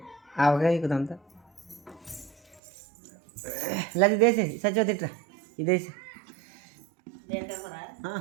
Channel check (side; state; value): left; drops out; at 2.6 s